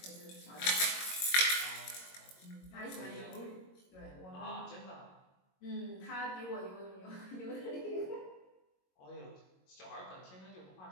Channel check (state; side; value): late; right; 22 ms